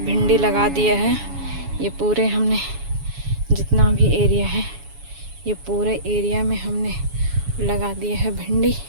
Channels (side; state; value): left; late; 7.1 ms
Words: लगा दिया है। ये पूरे हमने जितना भी एरिया है, ये पूरे एरिया में हमने लगा दिया है भिंडी।